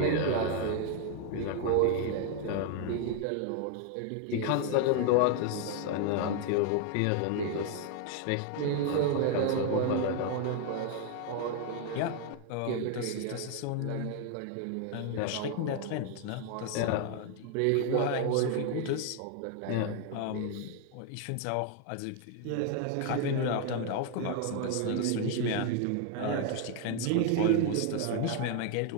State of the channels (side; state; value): both; different; correlation 0.00